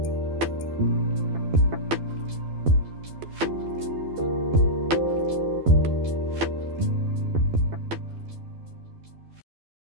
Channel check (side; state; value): left; late; 12 ms